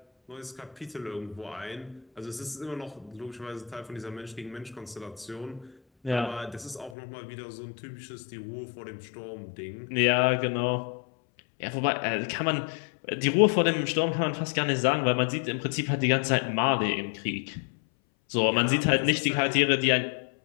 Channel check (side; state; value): right; drops out; at 7.0 s